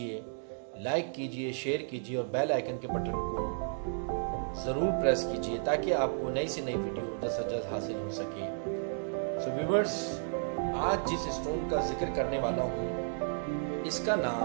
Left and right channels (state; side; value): silent; left; digital silence